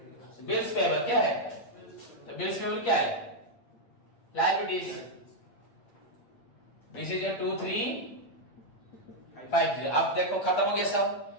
बिल्स पेबल क्या है, तो बिल्स पेबल क्या है, लायबिलिटीज, दिस इज योर 2350। अब देखो खत्म हो गया सब,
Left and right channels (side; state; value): right; late; 8.6 ms